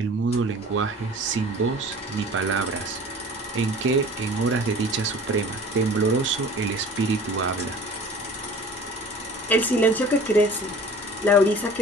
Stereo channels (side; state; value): both; normal; correlation 0.43